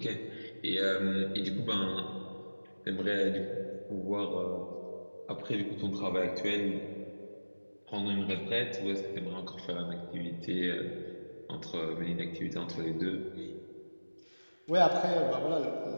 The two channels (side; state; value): both; inverted; correlation -1.00